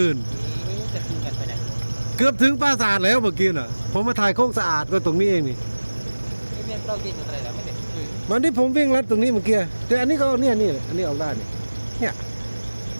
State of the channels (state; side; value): inverted; both; correlation -1.00